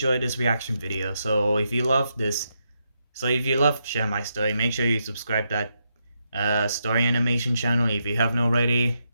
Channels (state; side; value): inverted; both; correlation -0.82